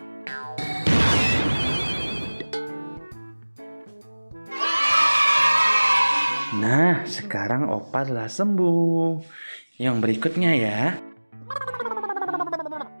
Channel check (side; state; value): both; inverted; correlation -1.00